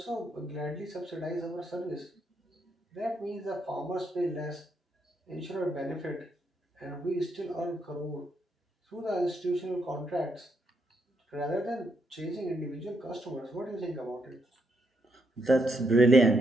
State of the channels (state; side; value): normal; both; correlation 0.77